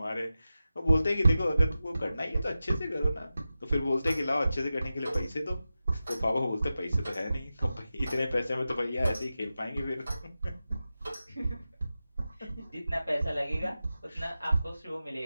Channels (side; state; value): both; inverted; correlation -0.93